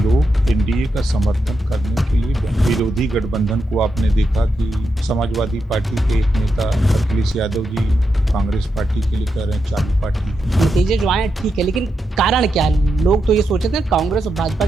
एनडीए का समर्थन करने के लिए विरोधी गठबंधन को आपने देखा कि समाजवादी पार्टी के एक नेता अखिलेश यादव जी कांग्रेस पार्टी के लिए कह रहे हैं चालू पार्टी। नतीजे जो आए ठीक है, लेकिन कारण क्या है? लोग तो ये सोचे थे कांग्रेस और भाजपा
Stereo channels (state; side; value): normal; both; correlation 0.85